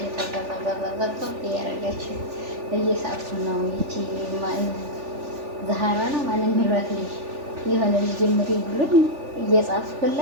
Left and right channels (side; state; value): left; late; 3.4 ms